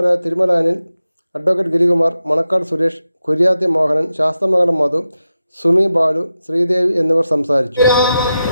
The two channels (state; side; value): inverted; both; correlation -0.90